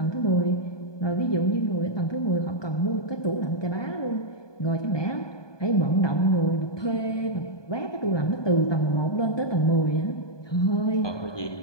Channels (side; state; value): right; late; 1.2 ms